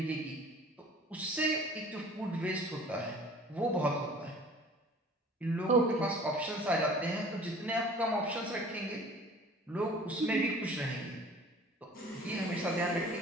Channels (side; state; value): both; normal; correlation 0.48